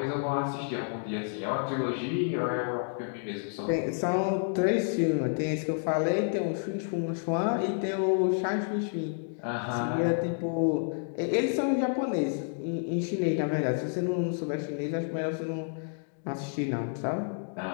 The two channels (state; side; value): silent; right; digital silence